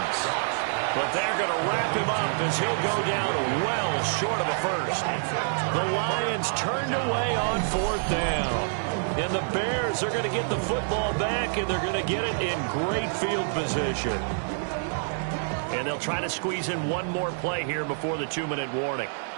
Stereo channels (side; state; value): left; silent; digital silence